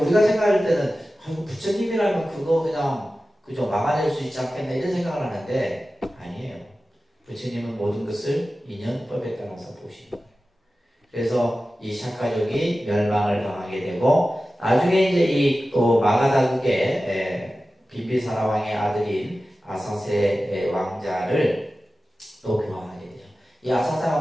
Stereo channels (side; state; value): both; normal; correlation 0.95